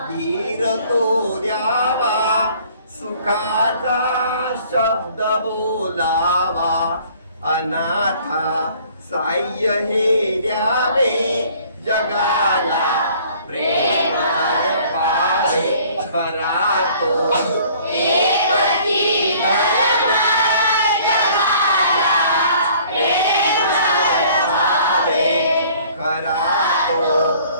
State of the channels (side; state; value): both; inverted; correlation -0.55